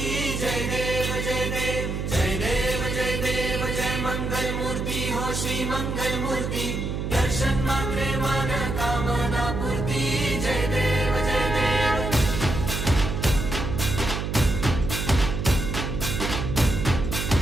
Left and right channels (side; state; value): right; noise; hum, 3 dB below the sound